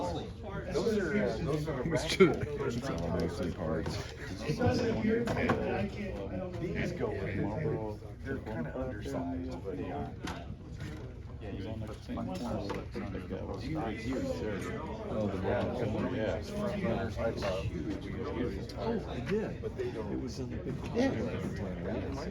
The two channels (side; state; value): both; identical; correlation 1.00